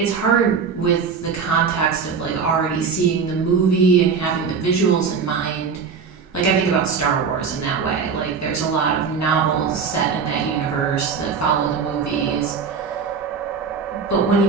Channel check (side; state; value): left; quieter; 5.8 dB